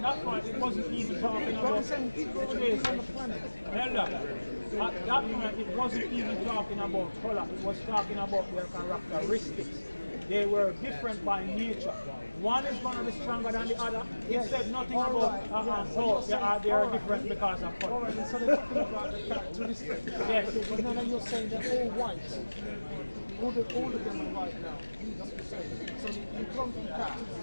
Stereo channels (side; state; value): both; inverted; correlation -1.00